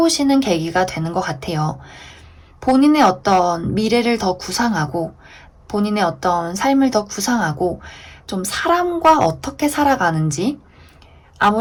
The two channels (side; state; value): both; identical; correlation 1.00